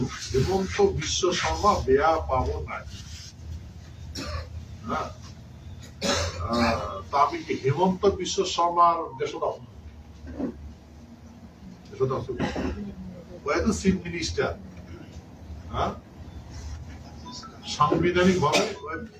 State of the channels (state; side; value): identical; both; correlation 1.00